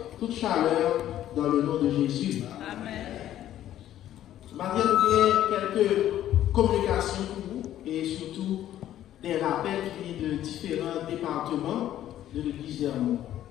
toute chaleur dans le nom de Jésus. Amen. Maintenant, nous avons quelques communications pour vous et surtout des rappels qui viennent de différents départements de l'église d'Hermont.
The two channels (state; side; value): quieter; right; 12.2 dB